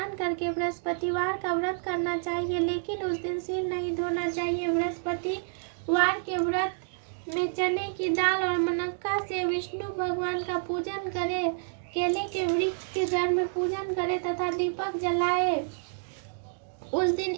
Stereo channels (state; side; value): silent; left; digital silence